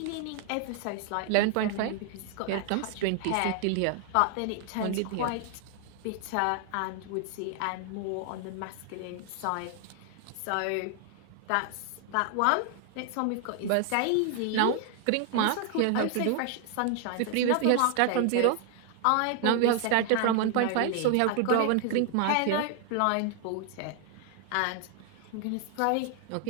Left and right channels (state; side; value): different; both; correlation 0.00